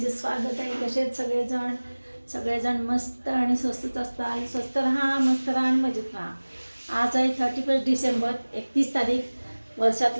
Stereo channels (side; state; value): both; inverted; correlation -1.00